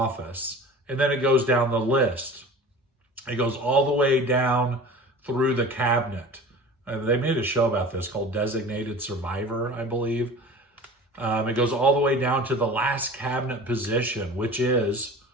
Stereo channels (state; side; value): normal; both; correlation 0.39